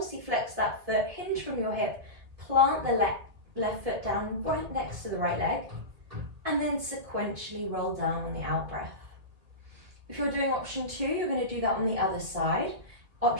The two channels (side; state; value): left; late; 2.1 ms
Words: that foot, hinge from your hip, plant the left foot down right next to the right leg, and then sequentially roll down on the out breath. If you're doing option 2, you're going to do that on the other side.